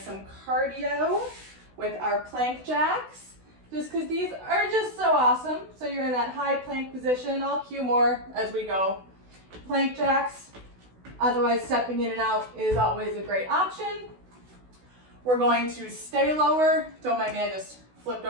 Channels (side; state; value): left; late; 16 ms